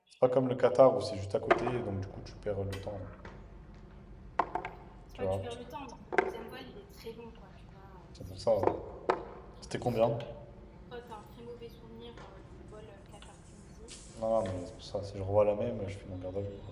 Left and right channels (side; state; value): both; identical; correlation 1.00